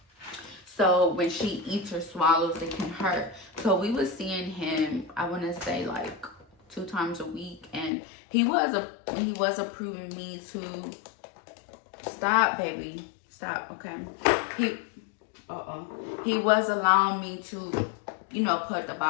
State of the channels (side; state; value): right; drops out; at 7.9 s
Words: So when she eats or swallows, it can hurt. So we was seeing him, I want to say like 2 times a week, and he was approving me to stop, baby, stop. Okay, he was allowing me to, you know, put the